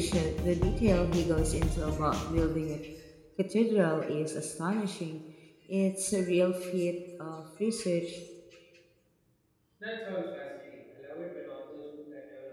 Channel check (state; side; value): identical; both; correlation 1.00